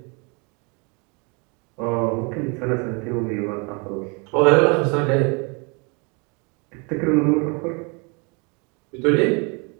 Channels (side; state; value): left; quieter; 32.3 dB